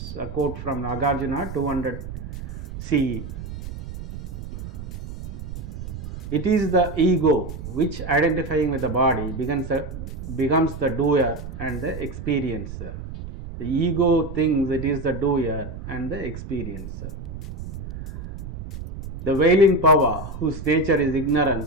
a quote from Nagarjuna 200 CE. It is the ego which, identifying with the body, becomes the doer and the experiencer. The ego thinks it is the doer and the experiencer. The veiling power, whose nature is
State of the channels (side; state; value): right; noise; rumble, 10 dB below the sound